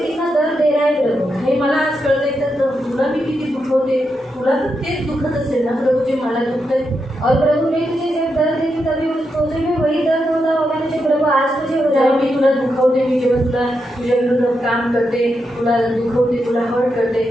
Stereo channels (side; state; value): both; normal; correlation 0.84